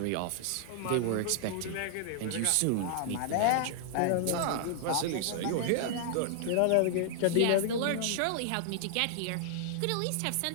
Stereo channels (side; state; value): both; different; correlation -0.01